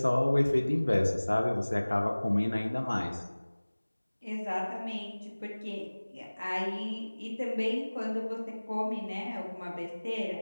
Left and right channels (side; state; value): both; inverted; correlation -1.00